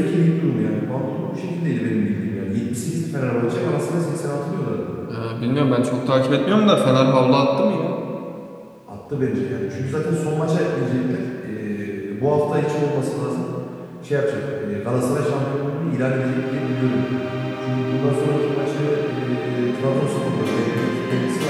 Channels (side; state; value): both; identical; correlation 1.00